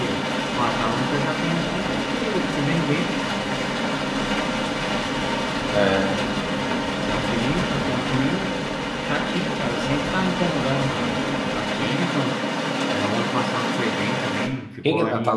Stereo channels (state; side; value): identical; both; correlation 1.00